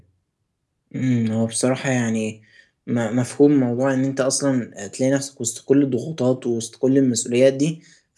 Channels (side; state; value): both; identical; correlation 1.00